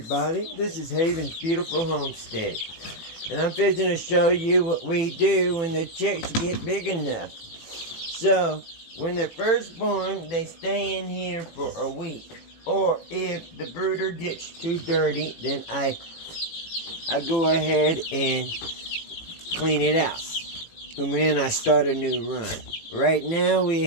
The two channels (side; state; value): right; late; 18 ms